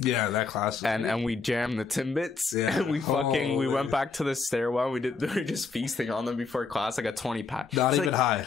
Yeah, that class. And we jammed the Timbits. Yeah. And we went back to the stairwell. We were just feasting on them before class. I got 20 pack. Not even high.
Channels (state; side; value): quieter; right; 4.6 dB